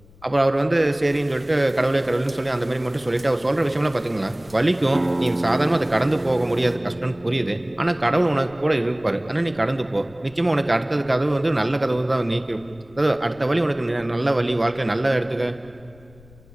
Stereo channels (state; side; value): noise; left; rumble, 24 dB below the sound